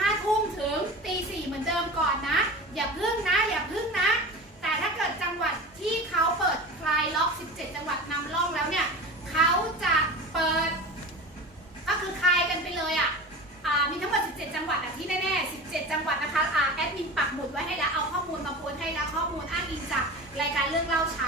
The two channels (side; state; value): both; normal; correlation 0.32